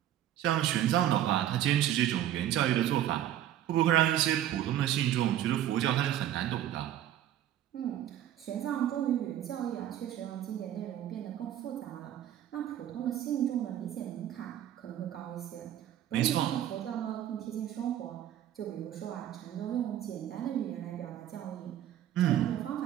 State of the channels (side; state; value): left; quieter; 11.8 dB